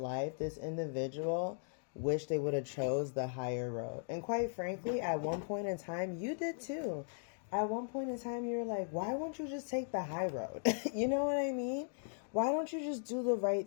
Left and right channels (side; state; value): right; silent; digital silence